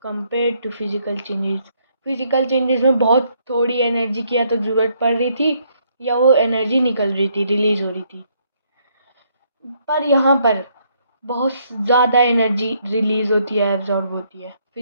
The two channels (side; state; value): both; inverted; correlation -0.71